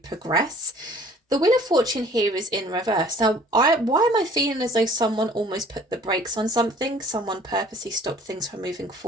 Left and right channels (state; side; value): normal; both; correlation 0.53